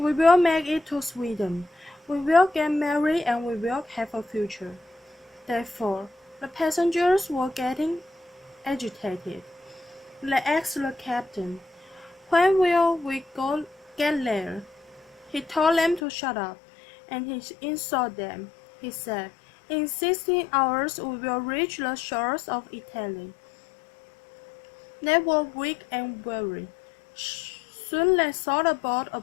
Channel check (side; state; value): right; drops out; at 16.0 s